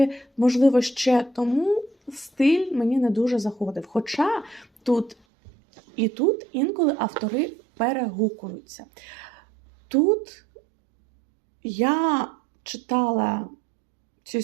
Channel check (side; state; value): left; drops out; at 5.2 s